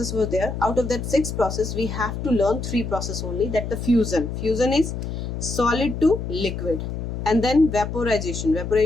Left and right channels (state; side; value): noise; left; hum, 5 dB below the sound